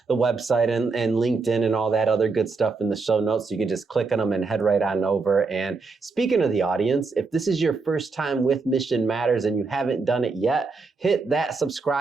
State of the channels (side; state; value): left; quieter; 4.2 dB